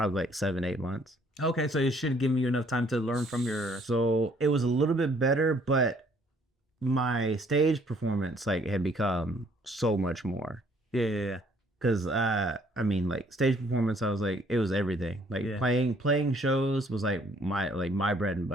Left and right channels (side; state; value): both; normal; correlation 0.62